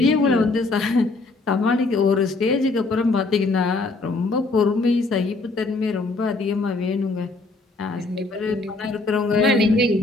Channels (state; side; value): quieter; right; 3.4 dB